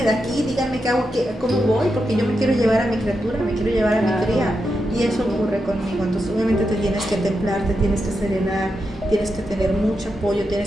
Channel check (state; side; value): normal; both; correlation 0.86